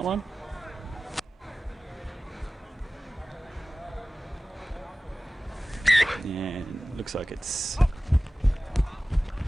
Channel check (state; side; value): normal; both; correlation 0.97